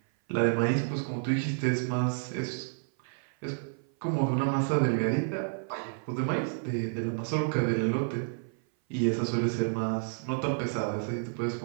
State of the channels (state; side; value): silent; left; 56 dB below the other